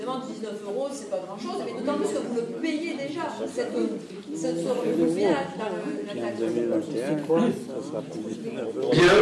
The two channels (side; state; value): both; identical; correlation 1.00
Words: 19 €, c'est pas grand-chose, mais d'autant plus que vous le payez déjà. Vous payez la taxe. Bien,